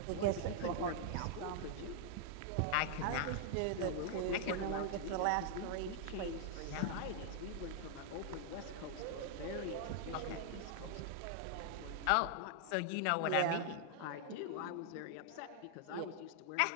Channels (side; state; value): both; different; correlation 0.00